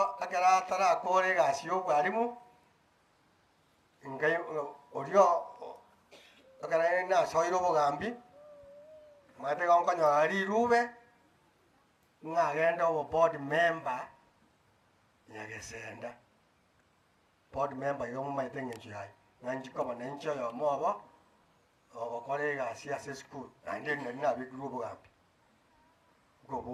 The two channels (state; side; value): identical; both; correlation 1.00